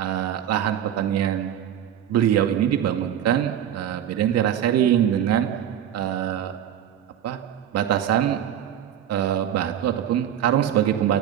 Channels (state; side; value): quieter; left; 10.3 dB